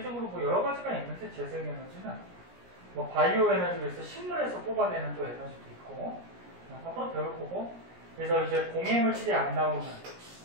뭐 여러 가지가 있는데 재생 에너지는 뭐 바이오 에너지에서 식물에서 뽑아내는 또 에너지도 있고 앞으로 배울 거고. 그래서 이제 공해물질이 안 나오는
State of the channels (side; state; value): left; late; 17 ms